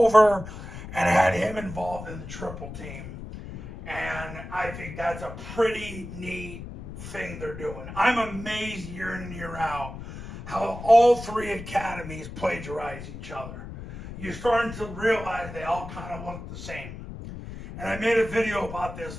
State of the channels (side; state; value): left; noise; rumble, 11 dB below the sound